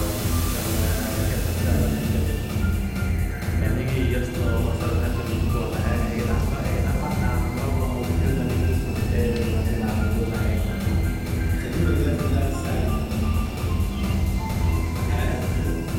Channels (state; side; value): identical; both; correlation 1.00